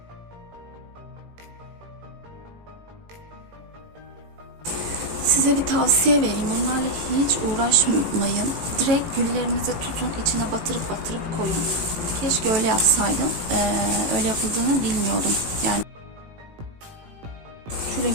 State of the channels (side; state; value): left; late; 18 ms